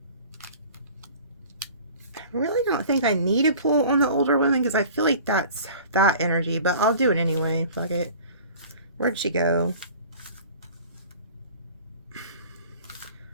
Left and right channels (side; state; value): both; inverted; correlation -0.44